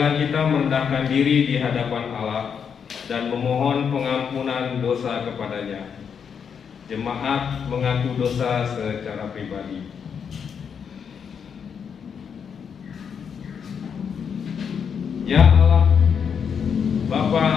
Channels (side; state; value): right; quieter; 7.0 dB